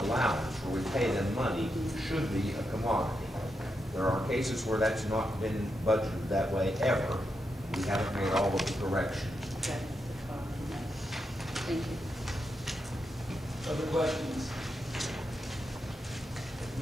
allowance, where we pay them money, should be a commodity. There are cases where that's not been budgeted that way ever. We haven't made all of the corrections. Okay. Thank you. Other questions? If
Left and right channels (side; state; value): both; normal; correlation 0.85